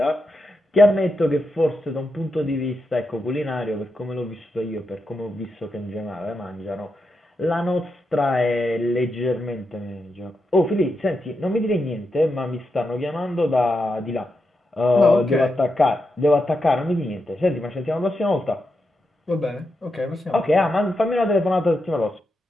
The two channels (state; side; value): normal; both; correlation 0.86